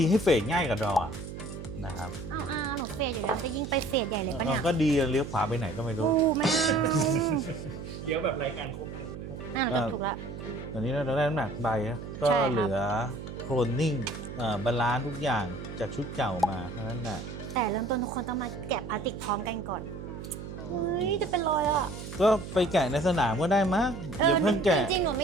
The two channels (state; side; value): noise; right; hum, 10 dB below the sound